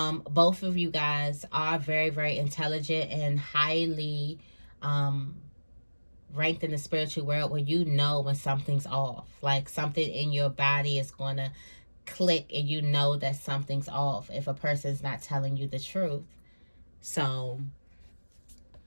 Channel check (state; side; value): inverted; both; correlation -1.00